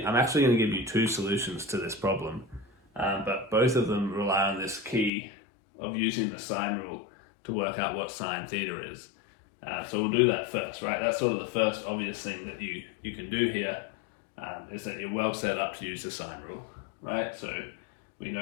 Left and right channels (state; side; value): drops out; right; at 5.1 s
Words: actually going to give you two solutions to this problem, but both of them rely on this key of using the sine rule to work out what sine theta is. So we'll do that first, right? That's sort of the first obvious thing that you can do here, is that you're well set up to use the sine rule, right? So we